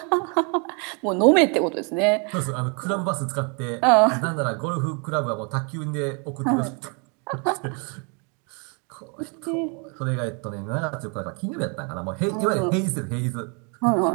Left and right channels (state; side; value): quieter; left; 35.2 dB